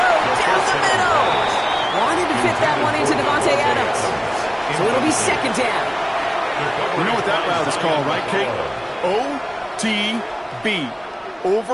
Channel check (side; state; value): both; identical; correlation 1.00